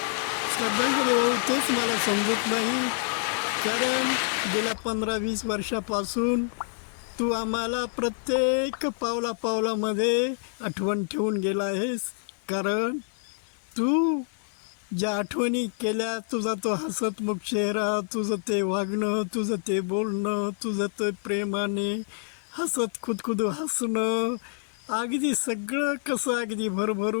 श्रद्धांजली वाहू तेच मला समजत नाही. कारण गेल्या 15-20 वर्षापासून तू आम्हाला प्रत्येक पावलापावलामध्ये आठवण ठेवून गेला आहेस. कारण तू ज्या आठवणी केल्या, तुझा तो हसतमुख चेहरा, तुझं ते वागणं, तुझं ते बोलणं, तुझं ते प्रेमाने हसत खुदखुदू हसणं, अगदी सगळं कसं अगदी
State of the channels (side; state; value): right; silent; digital silence